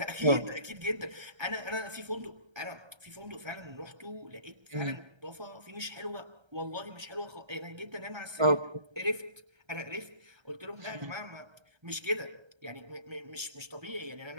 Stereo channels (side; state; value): left; late; 1.3 ms